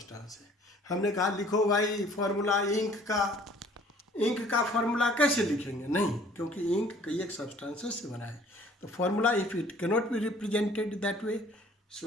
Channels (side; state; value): both; normal; correlation 0.55